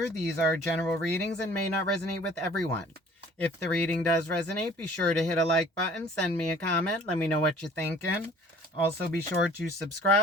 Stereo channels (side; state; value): both; normal; correlation 0.51